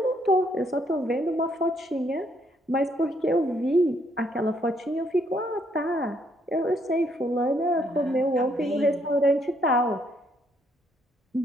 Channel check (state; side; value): normal; both; correlation 0.70